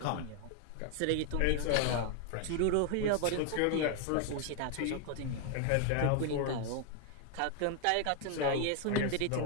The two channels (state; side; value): different; both; correlation 0.01